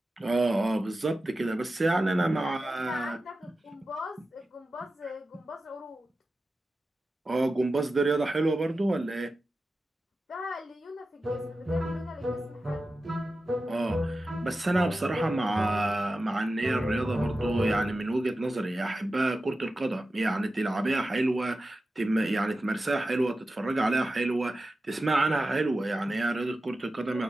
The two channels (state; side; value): normal; both; correlation 0.93